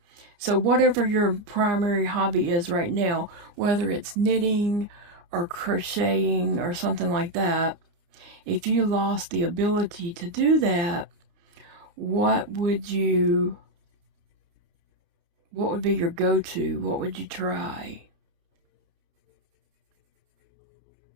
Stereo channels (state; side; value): late; left; 29 ms